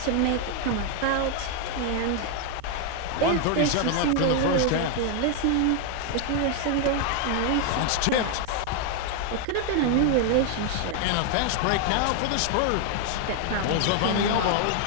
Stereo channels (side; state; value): both; different; correlation 0.00